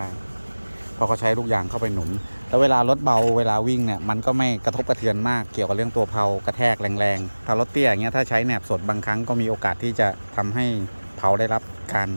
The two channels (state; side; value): inverted; both; correlation -1.00